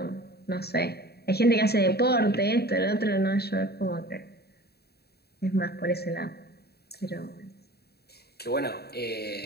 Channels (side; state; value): right; late; 0.47 ms